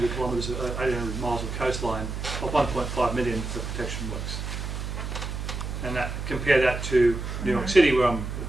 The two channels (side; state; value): right; noise; hum, 5 dB below the sound